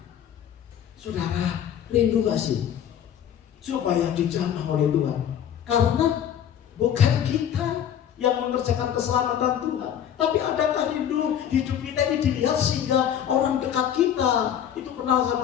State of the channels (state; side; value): quieter; right; 9.6 dB